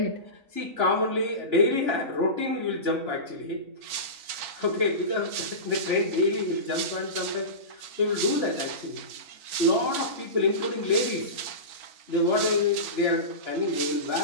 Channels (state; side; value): late; left; 4.4 ms